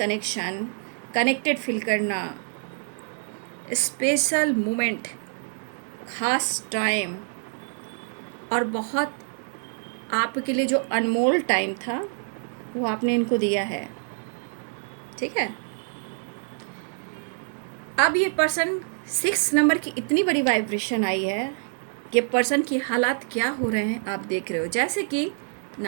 connected feel करना, स्पेशल मोमेंट, ख़ास टाइम, और बहुत आपके लिए जो अनमोल टाइम था वो आपने इनको दिया है, ठीक है। अब ये पर्सन 6 नंबर की इतनी बड़ी वाइब्रेशन आई है, ये पर्सन की हालात क्या हो रहे हैं आप देख रहे हो, जैसे कि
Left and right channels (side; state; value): left; silent; 61 dB below the other